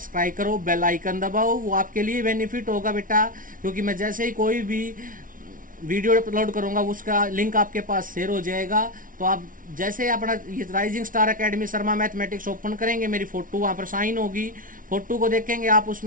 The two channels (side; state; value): left; late; 0.39 ms